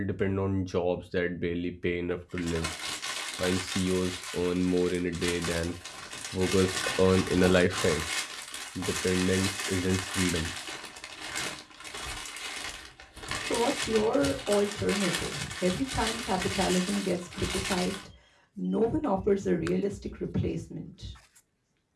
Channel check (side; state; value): both; identical; correlation 1.00